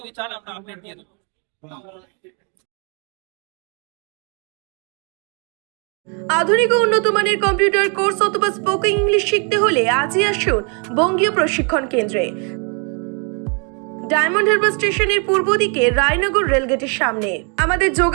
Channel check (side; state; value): left; quieter; 37.1 dB